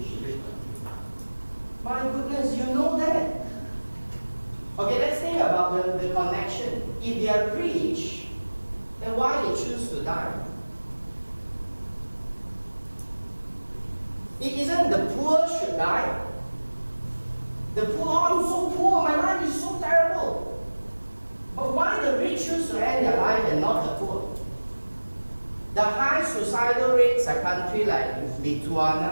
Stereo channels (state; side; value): inverted; both; correlation -1.00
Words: My goodness, you know that. Okay, let's think about the connection. If they are rich, then why they choose to die? It isn't the poor should die. The poor, oh, I'm so poor, my life is so terrible. But why the rich choose to end their life and not the poor? The high suicidal rates are countries like